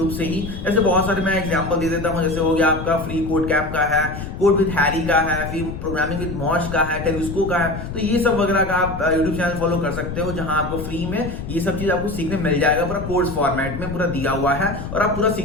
से ही। जैसे बहुत सारे मैं एग्जांपल दे देता हूं, जैसे हो गया आपका फ्री कोड कैप का है, कोड विद हैरी का है, फिर प्रोग्रामिंग विद मॉश का है, टेलिस्को का है। तो ये सब वगैरह का आप यूट्यूब चैनल फॉलो कर सकते हो, जहां आपको फ्री में ये सब चीज आपको सीखने मिल जाएगा, पूरा कोर्स फॉर्मेट में पूरा दिया हुआ है, और आप पूरा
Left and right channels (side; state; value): left; noise; rumble, 8 dB below the sound